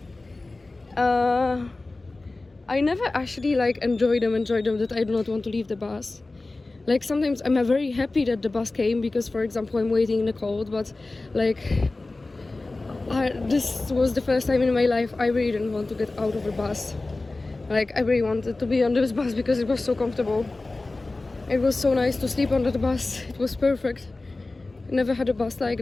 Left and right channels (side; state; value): right; quieter; 3.2 dB